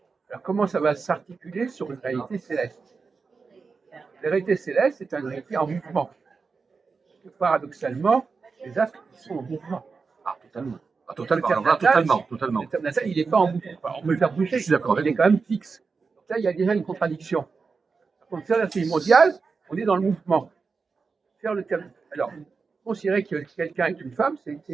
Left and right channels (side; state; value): left; quieter; 4.8 dB